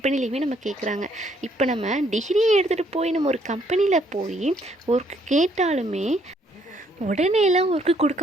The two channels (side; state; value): both; normal; correlation 0.68